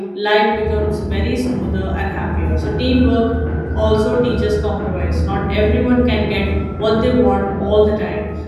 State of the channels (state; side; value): identical; both; correlation 1.00